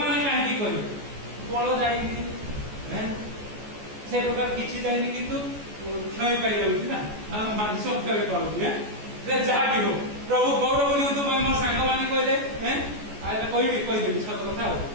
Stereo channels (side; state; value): left; late; 14 ms